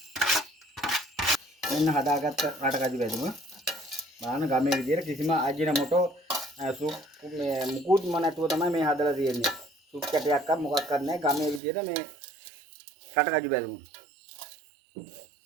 එන්න හදාගත්ත රටකඩු බැදුම බලන්න ගමේ විදියට කිසිම අජිනමොටෝ සුප් මේ මුකුත්ම නැතුව තමයි මේ හදලා තියෙන්නේ. සුප් කැටයක්වත් මොකක්වත් නැහැ. ගමේ විදියට මේ රටකඩු බැදුම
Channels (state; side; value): drops out; left; at 11.6 s